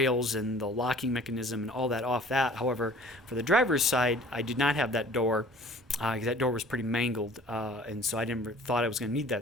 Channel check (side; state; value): both; normal; correlation 0.49